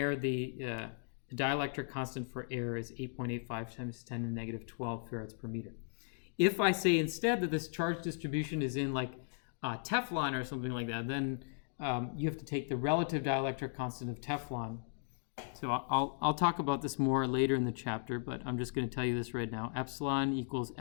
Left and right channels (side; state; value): right; silent; digital silence